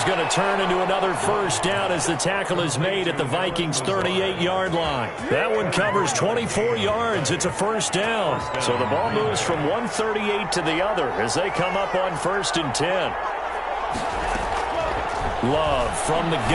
going to turn into another first down as the tackle is made at the Vikings' 38-yard line. That one covers 24 yards. It's a first down. So the ball moves from 138 to the other as they come up on first and 10. Love from the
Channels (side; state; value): both; identical; correlation 1.00